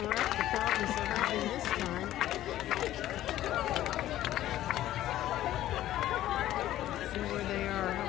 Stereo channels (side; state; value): right; quieter; 13.6 dB